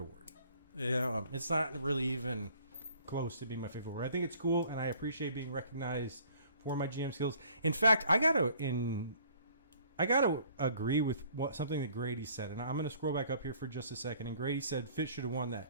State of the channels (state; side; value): inverted; both; correlation -0.56